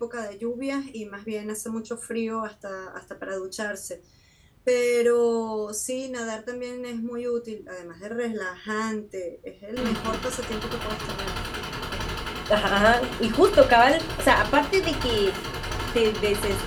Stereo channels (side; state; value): both; identical; correlation 1.00